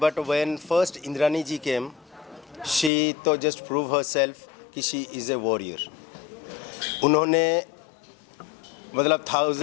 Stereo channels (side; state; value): right; drops out; at 2.9 s